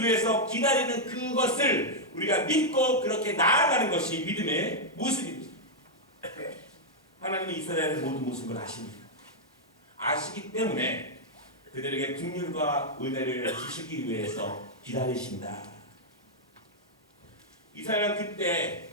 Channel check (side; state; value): both; normal; correlation -0.04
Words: 위해서 기다리는 그것을 우리가 믿고 그렇게 나아가는 것이 믿음의 모습입니다. 하나님은 이스라엘의 모든 모습을 아십니다. 아시기 때문에 그들에게 긍휼과 은혜를 주시기 위해서 기다리신다. 이스라엘은 그때